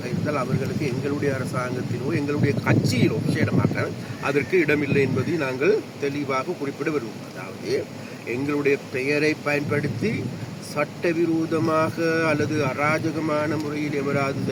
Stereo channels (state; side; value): identical; both; correlation 1.00